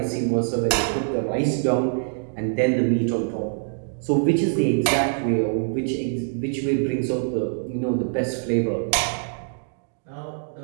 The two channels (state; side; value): silent; left; digital silence